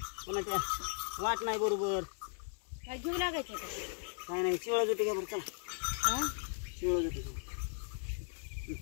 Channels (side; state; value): right; silent; 53 dB below the other